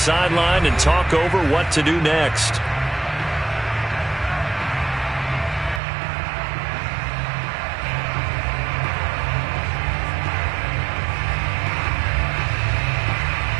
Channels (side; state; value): left; drops out; at 5.8 s